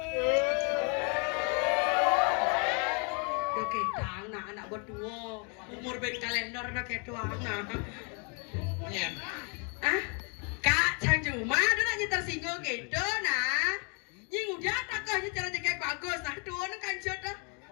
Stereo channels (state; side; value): quieter; right; 36.4 dB